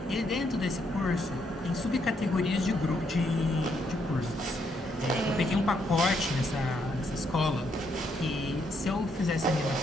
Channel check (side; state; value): both; normal; correlation 0.75